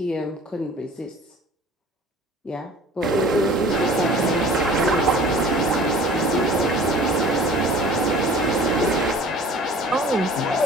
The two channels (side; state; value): both; normal; correlation 0.46